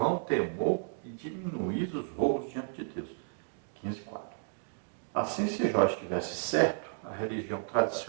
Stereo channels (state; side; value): silent; left; digital silence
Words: temor e diminuís os roubos diante de Deus. 15:4. Assim, se Jó estivesse certo, a religião